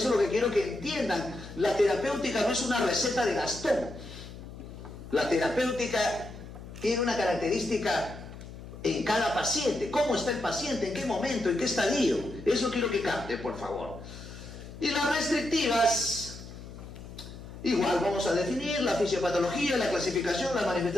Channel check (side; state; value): left; noise; hum, 14 dB below the sound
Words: es lo que quiero que entiendan. La terapéutica no es una receta de Gastón. La terapéutica tiene una característica en cada paciente. ¿Cómo está el paciente? ¿En qué momento? ¿En qué estadio? Eso quiero que capte, por favor. Y las restrictivas, igual vamos a definir la fisiopatología, la clasificación, las